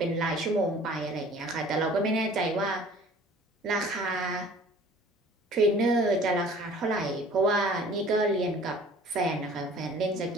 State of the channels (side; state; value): both; normal; correlation 0.49